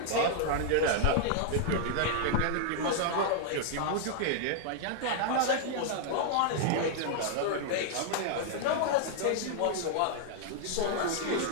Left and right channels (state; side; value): different; both; correlation -0.01